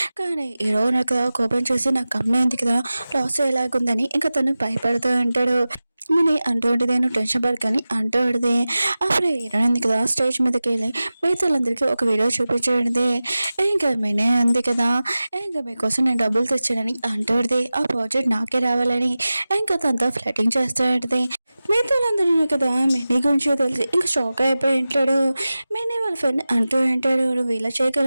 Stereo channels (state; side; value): inverted; both; correlation -0.96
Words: కానీ హీరో నాకు కోపం చేసి నాకు కంపెనీ ఉంది కదా లాస్ అయ్యేలాగుందని ఇంకా తను భయపడుతూ ఉంటాడు. మినీ అంటూ ఉంటుంది, నువ్వు టెన్షన్ పడకని అంటూ ఉంటుంది. అప్పుడు హీరోయిన్ ఉంది కదా స్టేజ్ మీదకి వెళ్ళి మిగతాలందరికీ ఒక వీడియో చూపించండి. ఇంకా మినీ ఉంది కదా, ఇంకా మీకోసం నేను డబ్బులు తెచ్చానని అంటూ ఉంటుంది, ఆ ప్రాజెక్ట్ నాకే రావాలని ఇంకా తనతో ఫ్లటింగ్ చేస్తూ ఉంటుంది. మిగతాలందరూ కదా మినీ గురించి తెలిసి ఇంకా షాక్ అయిపోయి ఉంటాడు. మినీ వాళ్ళ ఫ్రెండ్ అంటూ ఉంటాడు, నువ్వు ఇలా